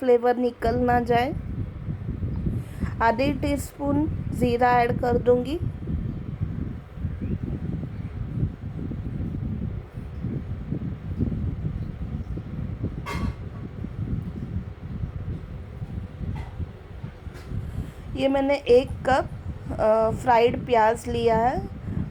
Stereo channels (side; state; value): both; identical; correlation 1.00